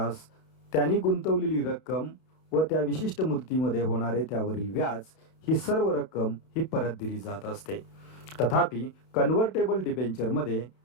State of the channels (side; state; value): right; late; 32 ms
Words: त्यांनी गुंतवलेली रक्कम व त्या विशिष्ट मुदतीमध्ये होणारे त्यावरील व्याज ही सर्व रक्कम ही परत दिली जात असते. तथापि कन्व्हर्टेबल डिबेंचरमध्ये